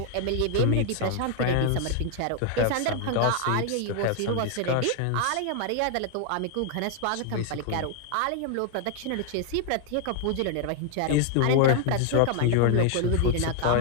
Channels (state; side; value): different; both; correlation 0.00